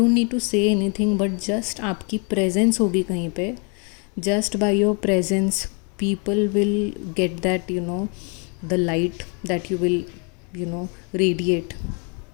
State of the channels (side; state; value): right; quieter; 35.9 dB